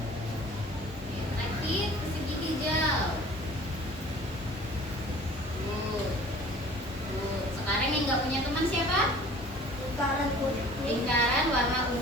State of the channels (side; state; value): both; normal; correlation 0.47